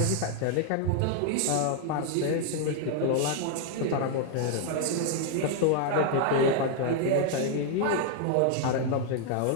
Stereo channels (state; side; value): different; both; correlation 0.00